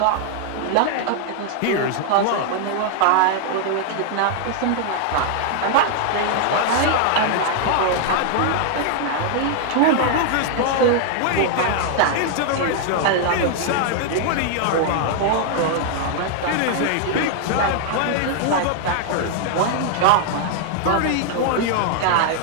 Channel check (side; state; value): both; different; correlation 0.00